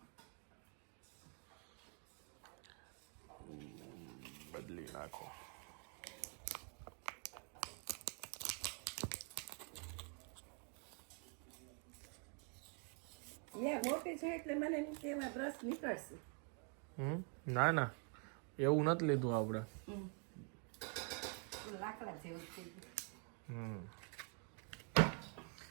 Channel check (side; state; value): left; quieter; 39.7 dB